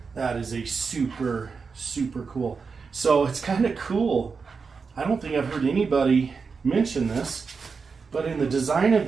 That is a super, super cool. So it's kind of cool. I don't think I've heard anybody mention this, but in the design of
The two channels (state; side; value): quieter; left; 5.1 dB